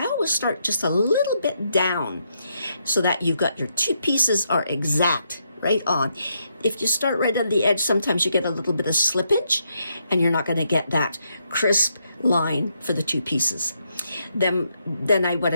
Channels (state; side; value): inverted; both; correlation -0.78